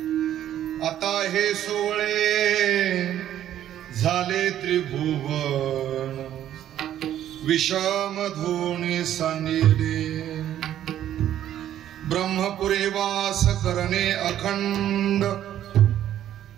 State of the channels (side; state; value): left; quieter; 11.5 dB